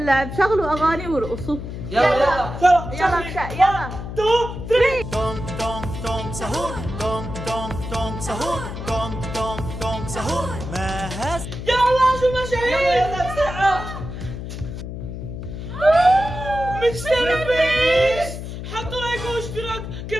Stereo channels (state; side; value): noise; left; hum, 8 dB below the sound